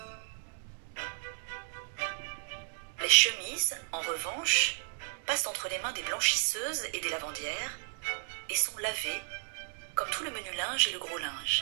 Les chemises, en revanche, passent entre les mains des blanchisseuses et des lavandières, et sont lavées, comme tout le menu linge et le gros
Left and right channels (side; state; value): left; silent; digital silence